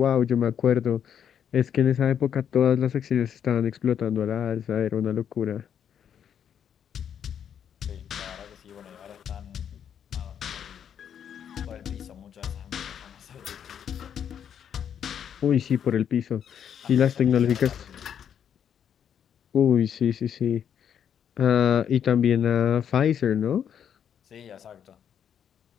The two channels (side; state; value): right; quieter; 8.6 dB